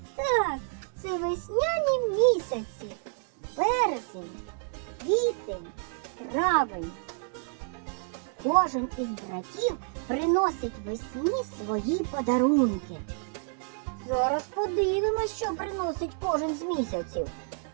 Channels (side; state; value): left; silent; 58 dB below the other